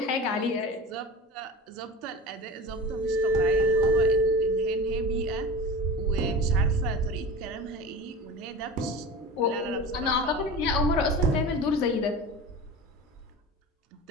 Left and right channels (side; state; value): both; normal; correlation 0.32